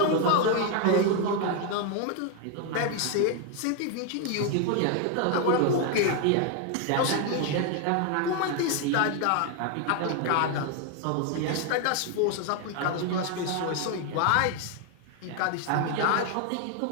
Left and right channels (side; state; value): both; different; correlation 0.01